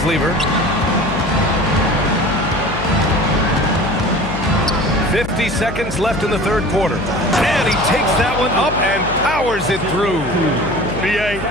Lever. 50 seconds left in the third quarter. And he takes that one up and powers it through. B.A.,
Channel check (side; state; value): left; noise; hum, 9 dB below the sound